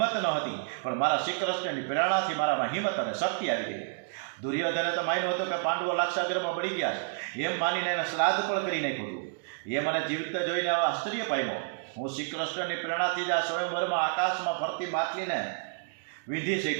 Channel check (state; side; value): silent; left; digital silence